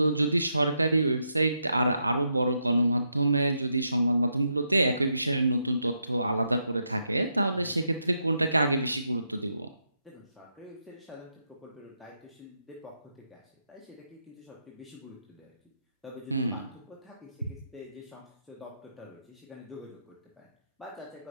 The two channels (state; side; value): inverted; both; correlation -0.81